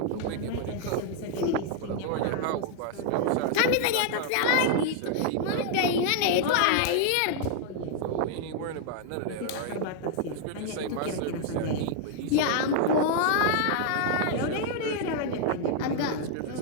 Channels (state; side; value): different; both; correlation 0.00